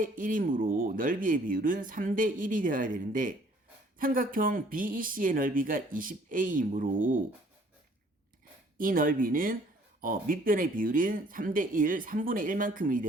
넓이의 비율은 3대1이 되어야 되는데 삼각형 BEC의 넓이가 20A이므로 이 넓이는 밑변의 비율인 3대1, 3분의 1만큼이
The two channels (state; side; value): normal; both; correlation 0.59